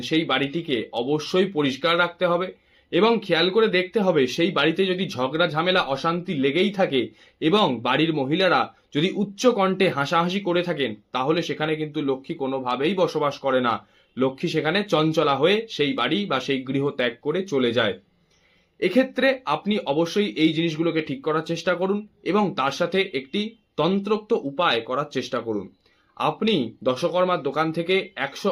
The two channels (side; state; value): both; identical; correlation 1.00